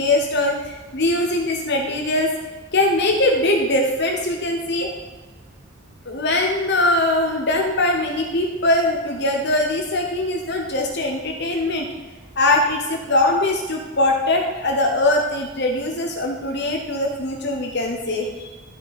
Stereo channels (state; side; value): normal; both; correlation 0.00